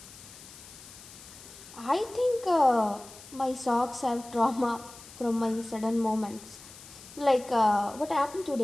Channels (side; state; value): left; noise; hiss, 18 dB below the sound